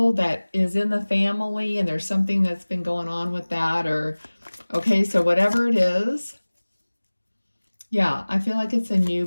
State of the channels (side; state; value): both; inverted; correlation -1.00